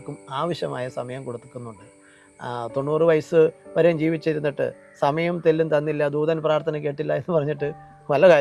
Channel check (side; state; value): both; identical; correlation 1.00